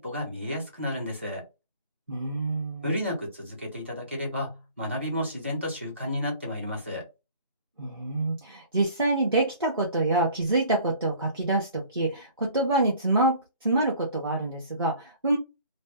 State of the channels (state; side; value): inverted; both; correlation -0.51